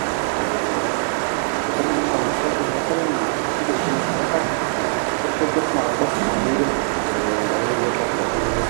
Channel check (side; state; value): left; silent; digital silence